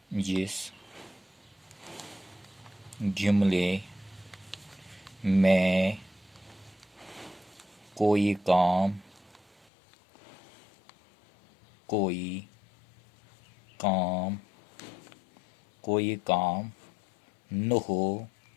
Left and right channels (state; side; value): drops out; right; at 9.7 s